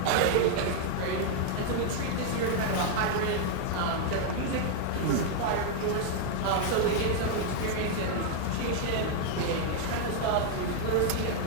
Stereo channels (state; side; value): different; both; correlation 0.00